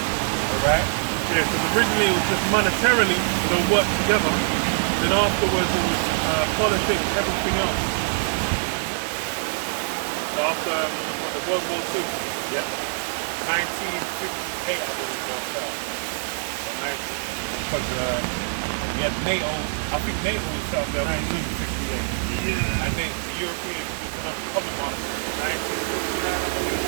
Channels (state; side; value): silent; left; digital silence